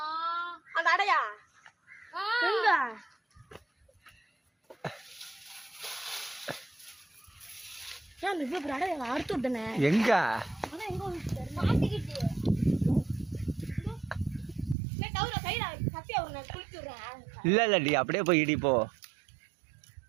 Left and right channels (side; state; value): left; drops out; at 14.8 s